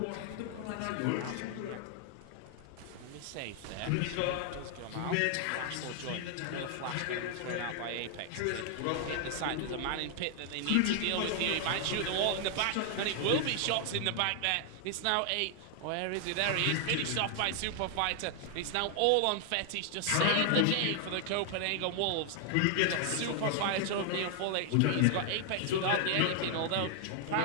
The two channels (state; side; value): different; both; correlation 0.00